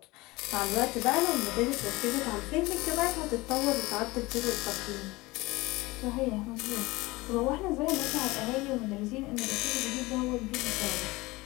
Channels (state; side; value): quieter; right; 21.4 dB